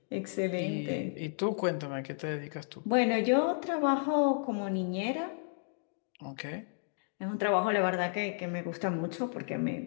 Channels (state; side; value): silent; right; digital silence